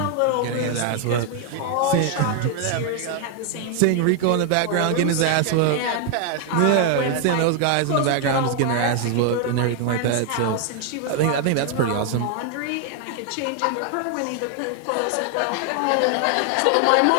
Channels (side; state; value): both; different; correlation 0.00